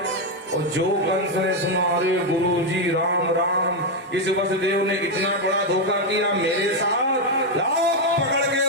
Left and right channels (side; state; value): both; normal; correlation 0.04